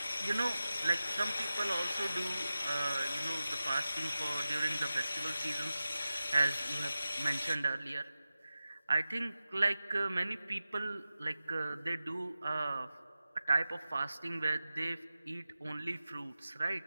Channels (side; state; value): both; inverted; correlation -0.94